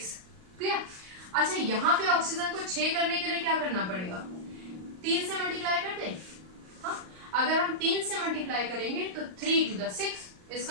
क्लियर? अच्छा, यहाँ पे ऑक्सीजन को 6 करने के लिए क्या करना पड़ेगा, 3 से मल्टीप्लाई कर दें। हाँ, अगर हम 3 से मल्टीप्लाई करेंगे तो 3 to the 6,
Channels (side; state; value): left; late; 38 ms